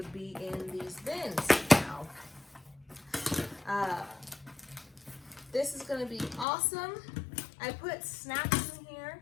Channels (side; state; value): right; drops out; at 6.5 s